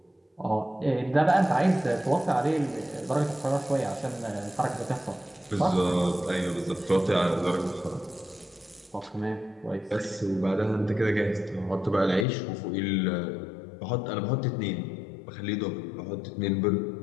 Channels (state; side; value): drops out; right; at 12.2 s